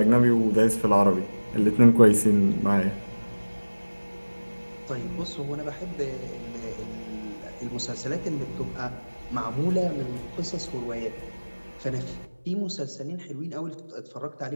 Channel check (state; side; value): inverted; both; correlation -1.00